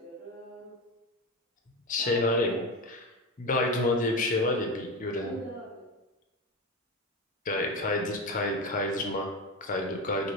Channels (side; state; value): both; normal; correlation 0.20